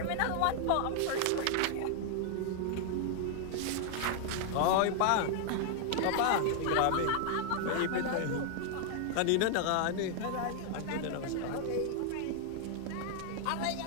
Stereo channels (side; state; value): both; different; correlation 0.00